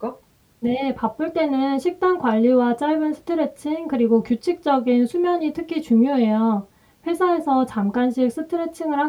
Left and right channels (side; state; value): both; identical; correlation 1.00